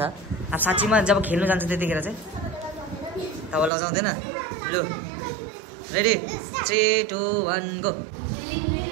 अब साँच्चीमा जब खेल्नु जान्छ त्यतिखेर चाहिँ तब लजाउँदैन लु रेडी 3 2 1 गो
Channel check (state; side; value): drops out; left; at 3.7 s